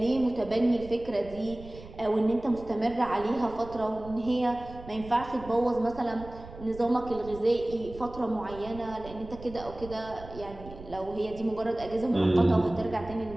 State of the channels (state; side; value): noise; right; rumble, 16 dB below the sound